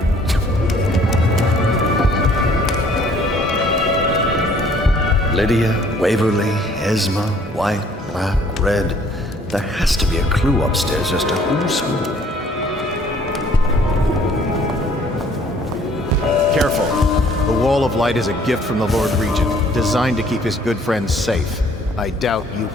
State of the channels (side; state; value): both; normal; correlation 0.59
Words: Lydia, Waverly, Esma, White, Black, Red. There has to be a clue upstairs as to who's who. Careful. The wall Ball of Light is a gift from the Lord Regent, designed to keep his good friends safe. I doubt you